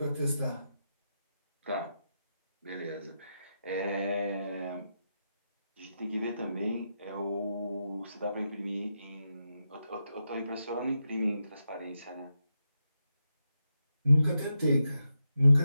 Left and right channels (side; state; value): both; inverted; correlation -0.86